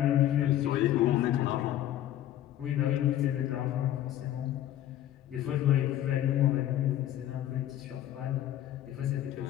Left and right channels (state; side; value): quieter; right; 12.4 dB